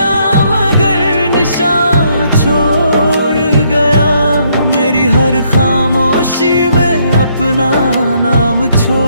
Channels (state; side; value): inverted; both; correlation -0.71